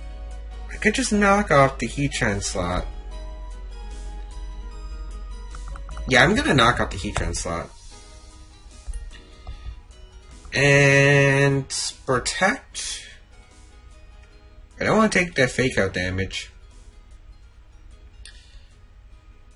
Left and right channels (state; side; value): identical; both; correlation 1.00